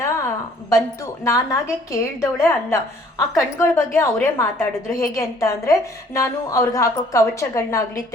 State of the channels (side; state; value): both; normal; correlation 0.59